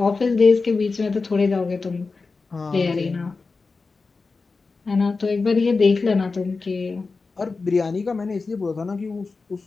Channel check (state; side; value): quieter; right; 4.2 dB